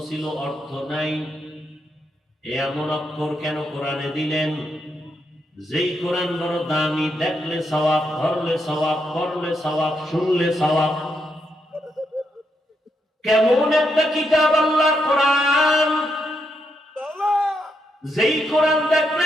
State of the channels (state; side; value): normal; both; correlation 0.80